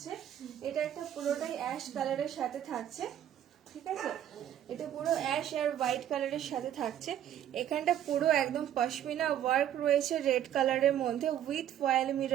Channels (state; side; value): quieter; left; 10.7 dB